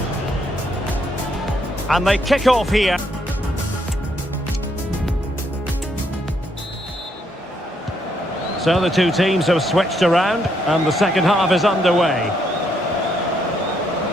And they kick off here. So the two teams have switched around, and the second half is underway.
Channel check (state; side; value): normal; both; correlation 0.74